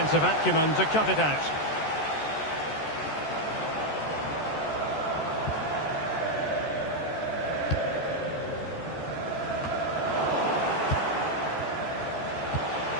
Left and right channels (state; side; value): late; right; 14 ms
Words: acumen to cut it out.